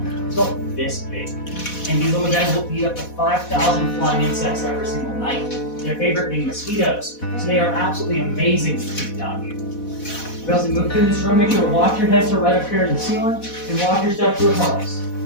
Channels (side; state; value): right; late; 4.1 ms